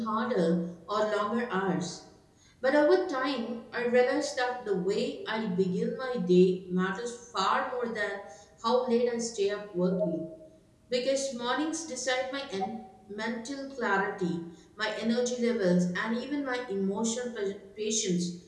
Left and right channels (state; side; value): identical; both; correlation 1.00